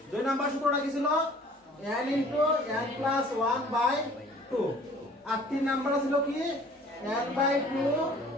2 নাম্বার সূত্রটা কি ছিল? n ইন্টু n প্লাস 1/2, আর 3 নাম্বারটা ছিল কি? n/2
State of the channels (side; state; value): both; normal; correlation 0.52